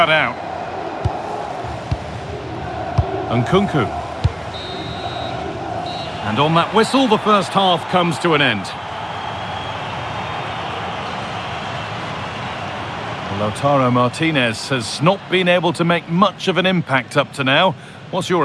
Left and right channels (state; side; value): identical; both; correlation 1.00